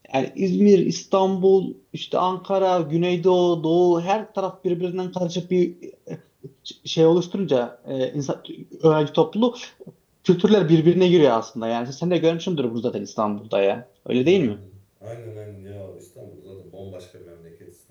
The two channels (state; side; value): identical; both; correlation 1.00